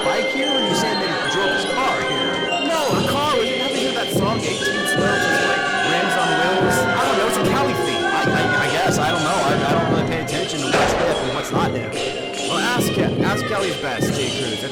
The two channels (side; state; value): both; identical; correlation 1.00